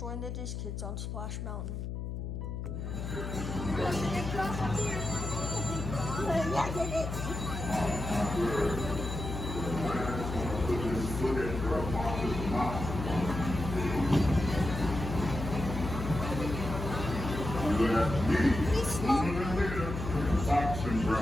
the Diz Kids on Splash Mountain. Fox and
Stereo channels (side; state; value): left; noise; hum, 5 dB below the sound